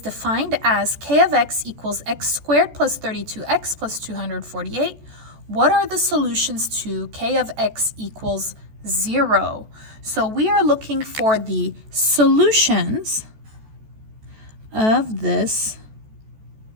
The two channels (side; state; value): left; late; 14 ms